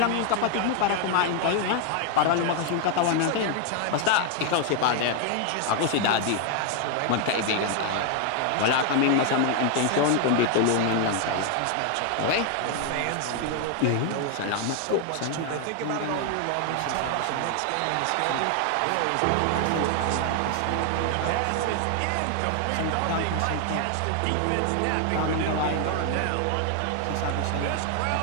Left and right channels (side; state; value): both; different; correlation 0.00